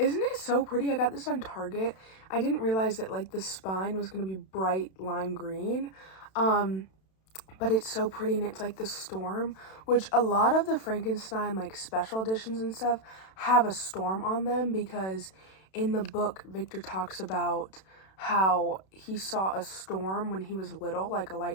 it so pretty? I got this on Target. I didn't realize that like the spine was going to be bright lime green. But it's so pretty, and it's like the storm, which a lot of the Frankenstein like special editions and stuff have a storm on them, because in the book Victor talks about how he saw a storm when he was little, like a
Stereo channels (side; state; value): right; late; 32 ms